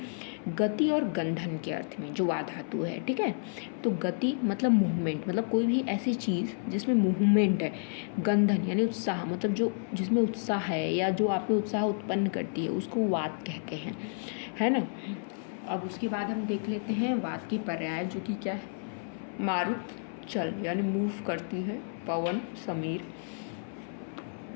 गति और गंधन के अर्थ में, जो वा धातु है। ठीक है। तो गति मतलब मूवमेंट, मतलब कोई भी ऐसी चीज़ जिसमें मूवमेंट है। गंधन यानी उत्साह, मतलब जो जिसमें उत्साह है या जो आप में उत्साह उत्पन्न करती है उसको वात कहते हैं, है ना। अब उसके बाद हम देख लेते हैं वात की पर्याय, जो कि क्या है? मारुत, चल यानी मूव करती है, पवन, समीर।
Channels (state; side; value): silent; right; 56 dB below the other